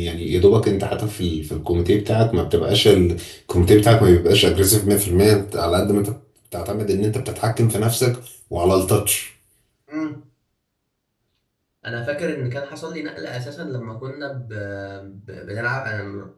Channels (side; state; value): both; identical; correlation 1.00